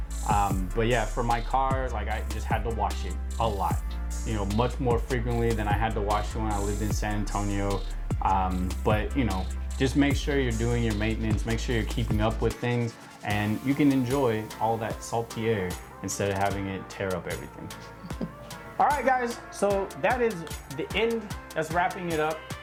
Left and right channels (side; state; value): both; identical; correlation 1.00